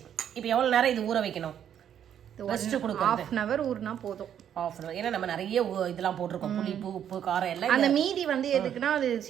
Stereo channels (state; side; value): quieter; left; 9.4 dB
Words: இப்போ எவ்வளவு நேரம் இது ஊற வைக்கணும்? ரெஸ்ட் கொடுக்கணும். 1/2 hour ஊறினா போதும். 1/2 hour. ஏன்னா நம்ம நிறைய இதெல்லாம் போட்டிருக்கோம், புளிப்பு உப்பு காரம் எல்லாம். அந்த மீதி வந்து எதுக்குன்னா அது